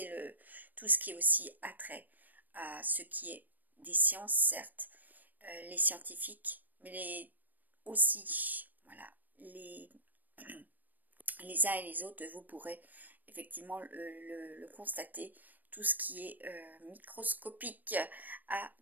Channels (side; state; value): left; late; 0.086 ms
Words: tout ce qui est aussi attrait à ce qui est des sciences, certes, les scientifiques, mais aussi, voilà, les uns et les autres, vous pourrez effectivement le constater, tout ce qui est microscopique a